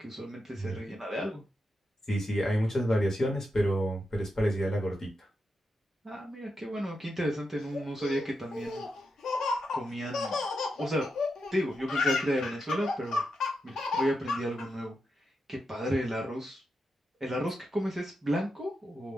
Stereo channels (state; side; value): normal; both; correlation 0.86